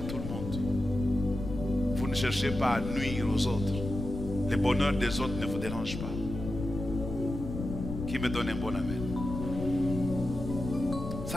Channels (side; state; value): left; noise; rumble, 6 dB below the sound